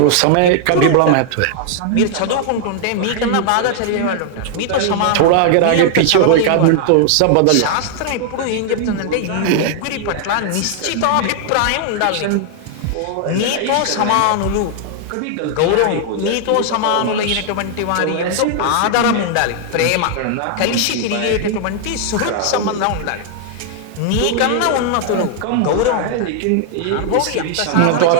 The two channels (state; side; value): different; both; correlation 0.00